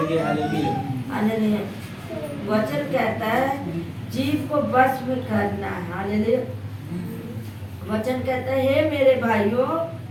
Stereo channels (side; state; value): both; identical; correlation 1.00